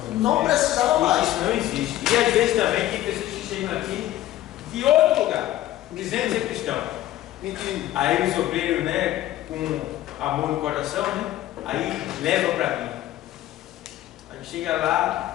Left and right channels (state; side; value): quieter; right; 14.3 dB